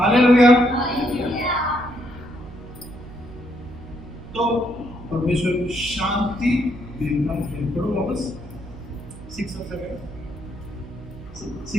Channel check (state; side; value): noise; right; hum, 17 dB below the sound